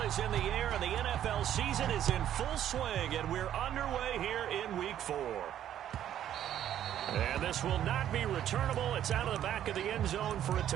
is in the air, and the NFL season is in full swing, and we're underway here in Week 4. And this will not be returnable. It's out of the back of the end zone for a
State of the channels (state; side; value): quieter; left; 11.0 dB